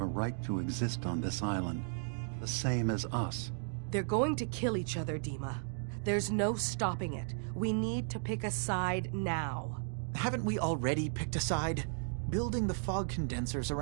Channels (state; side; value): silent; left; digital silence